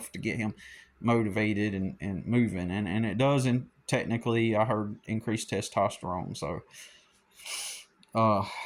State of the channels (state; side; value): identical; both; correlation 1.00